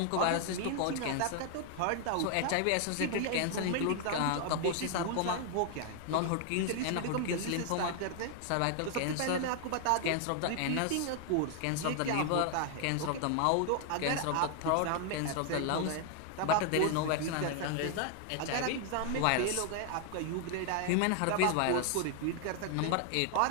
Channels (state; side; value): different; both; correlation 0.00